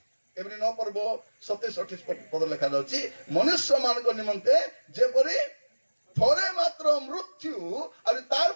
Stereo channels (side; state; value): both; inverted; correlation -1.00